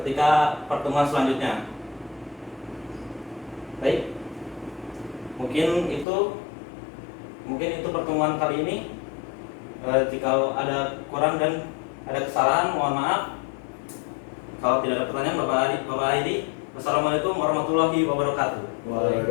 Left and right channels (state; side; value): drops out; right; at 6.1 s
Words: pertemuan selanjutnya. Baik, mungkin itu pertemuan kali ini. Jika ada kurang dan ada kesalahan, mohon maaf. Kalau tidak ada pertanyaan, Bapak Adi, Wassalamualaikum warahmatullahi wabarakatuh.